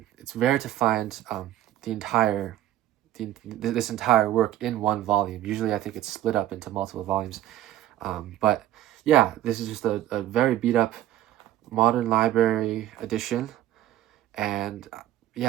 rare to find this entire work in one volume. Usually I think it's split up into multiple volumes. But yeah, this is just a very beat up modern library edition, and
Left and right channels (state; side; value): quieter; left; 13.1 dB